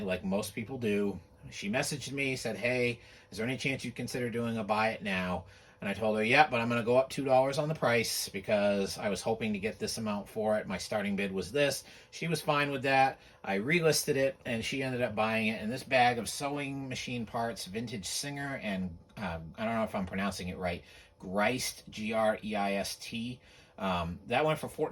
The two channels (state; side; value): identical; both; correlation 1.00